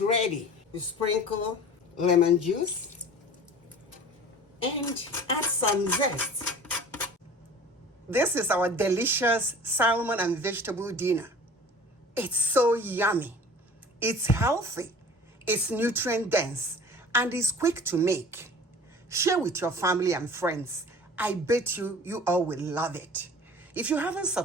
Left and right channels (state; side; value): normal; both; correlation 0.43